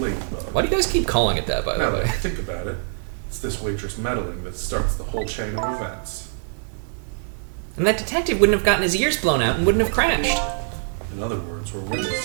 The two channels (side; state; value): left; silent; digital silence